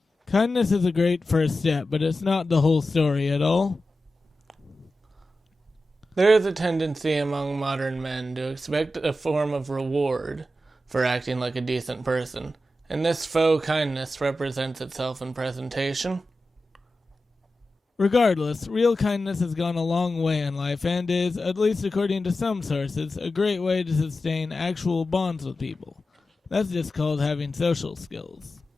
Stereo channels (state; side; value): normal; both; correlation 0.92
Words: Kindness is a great first step, but it's not the whole story at all. There is a tendency among modern men to expect a form of reward for acting like a decent person, and this faux kindness represents itself in presentation. Regardless, real kindness has gone a long way in life and is, at least according to some sources, a great way to sustain actual bonds with people. That's just called having social skills.